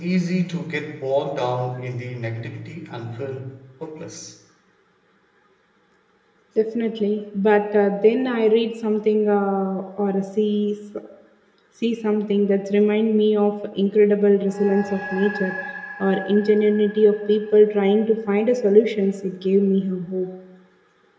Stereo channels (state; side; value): identical; both; correlation 1.00